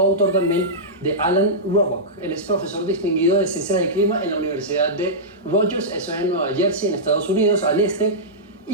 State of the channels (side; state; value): both; normal; correlation -0.13